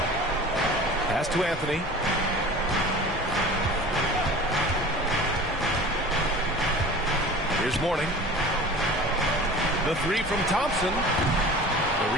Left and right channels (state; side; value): normal; both; correlation 0.40